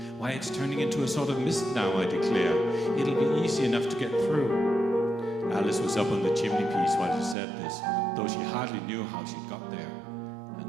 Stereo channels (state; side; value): drops out; left; at 7.4 s